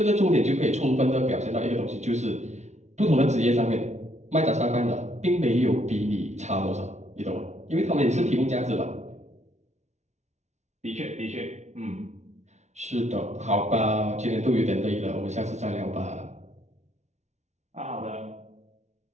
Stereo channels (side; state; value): left; late; 0.33 ms